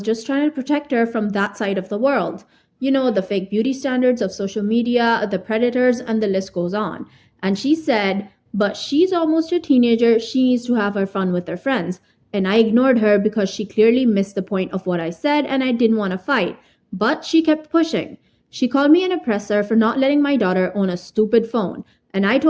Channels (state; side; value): identical; both; correlation 1.00